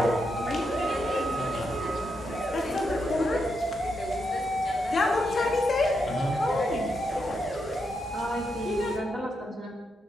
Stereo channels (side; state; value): both; normal; correlation 0.82